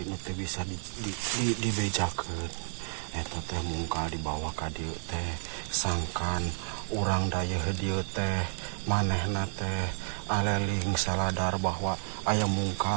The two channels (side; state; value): left; silent; digital silence